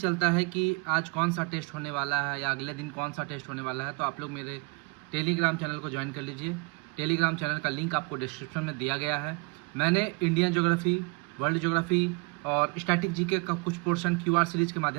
है कि आज कौन सा टेस्ट होने वाला है या अगले दिन कौन सा टेस्ट होने वाला है, तो आप लोग मेरे टेलीग्राम चैनल को ज्वाइन कर लीजिए। टेलीग्राम चैनल का लिंक आपको डिस्क्रिप्शन में दिया गया है। मैंने इंडियन ज्योग्राफी, वर्ल्ड ज्योग्राफी और स्टैटिक जीके का कुछ पोर्शन क्यूआर सीरीज के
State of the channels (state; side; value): quieter; left; 29.1 dB